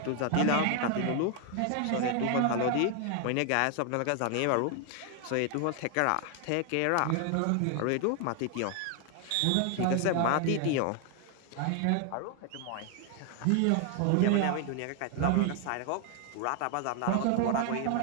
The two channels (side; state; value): both; different; correlation 0.00